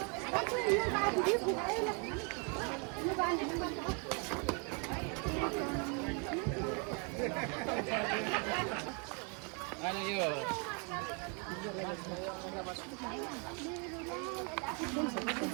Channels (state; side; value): quieter; left; 36.2 dB